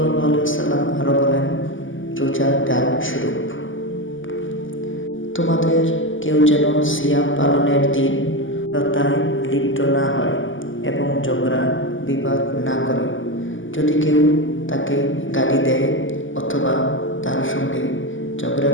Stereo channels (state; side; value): late; right; 0.57 ms